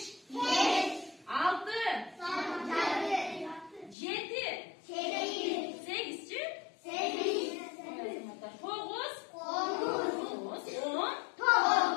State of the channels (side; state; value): right; drops out; at 4.0 s